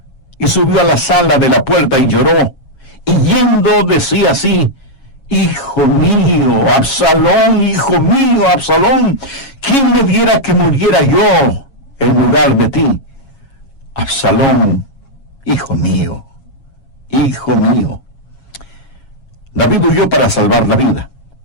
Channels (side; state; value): right; late; 7.3 ms